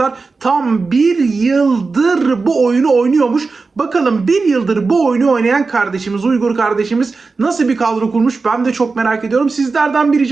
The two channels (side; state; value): left; quieter; 4.2 dB